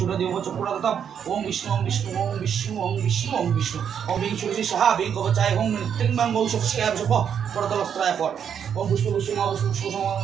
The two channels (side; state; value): left; quieter; 8.1 dB